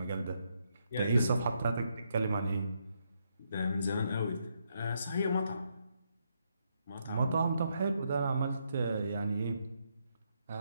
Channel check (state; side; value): inverted; both; correlation -0.78